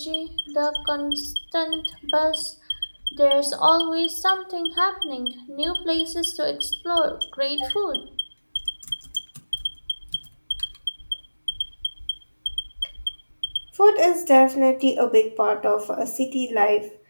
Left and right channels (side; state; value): both; inverted; correlation -1.00